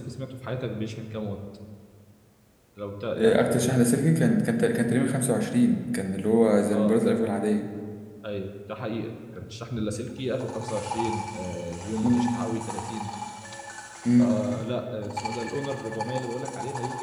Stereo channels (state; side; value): identical; both; correlation 1.00